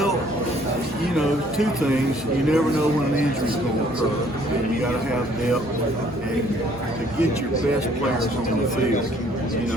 you know, two things. You never know when an injury is going to occur, and you got to have depth. And to get your best players on the field, you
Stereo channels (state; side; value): normal; both; correlation 0.61